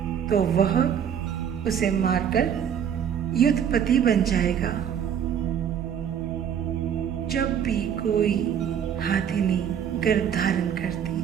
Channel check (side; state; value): left; quieter; 8.6 dB